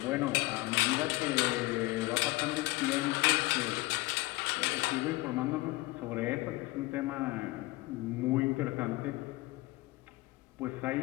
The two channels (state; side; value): quieter; right; 21.2 dB